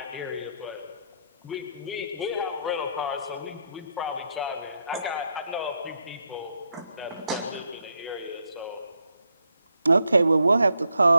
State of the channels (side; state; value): both; inverted; correlation -0.78